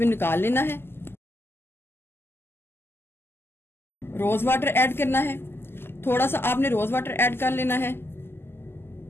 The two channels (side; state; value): right; late; 0.11 ms